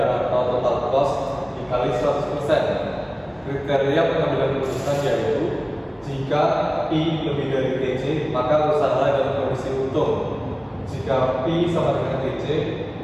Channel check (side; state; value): both; identical; correlation 1.00